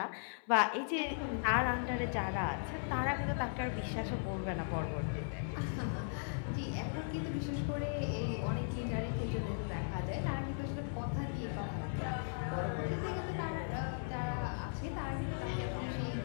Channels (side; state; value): right; silent; 53 dB below the other